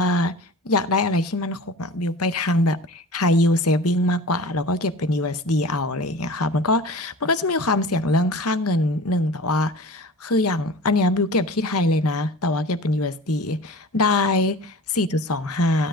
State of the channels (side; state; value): both; normal; correlation 0.38